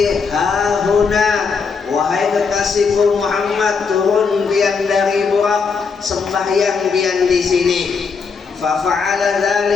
hahuna. Wahai kekasihku Muhammad, turun pian dari Burak, sembahyang pian di sini. Fafa'ala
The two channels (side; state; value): right; quieter; 5.3 dB